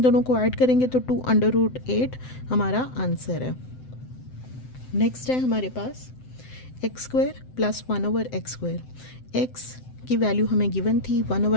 दोनों को ऐड करेंगे तो 2 अंडर रूट 8 हमारा आंसर है। नेक्स्ट है हमारे पास X square plus 1/x square. X की वैल्यू हमें गिवन थी,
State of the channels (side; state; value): right; late; 7.8 ms